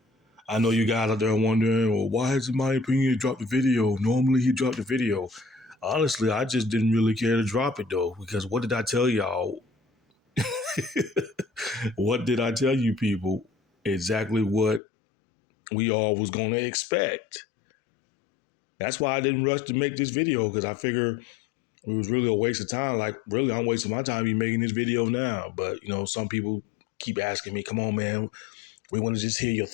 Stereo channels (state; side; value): drops out; right; at 14.8 s